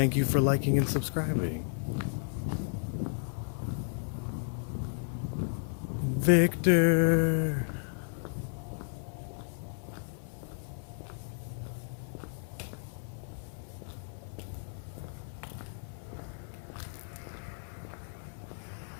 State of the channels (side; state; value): right; silent; 56 dB below the other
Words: you for liking and subscribing. Victor!